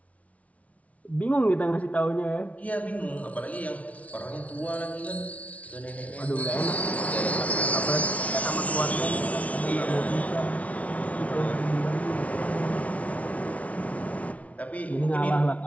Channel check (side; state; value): right; late; 0.067 ms